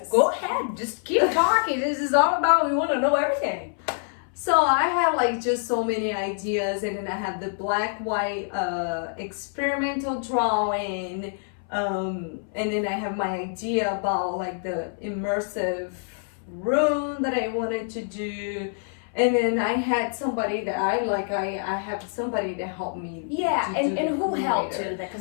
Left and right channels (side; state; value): right; silent; 60 dB below the other